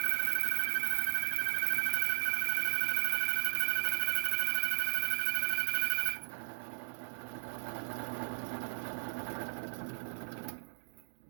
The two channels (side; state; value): left; silent; digital silence